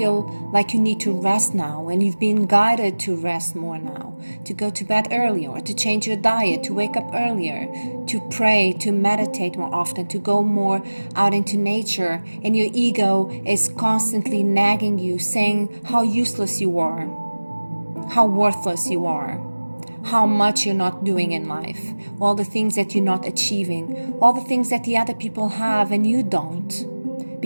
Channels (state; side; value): inverted; both; correlation -1.00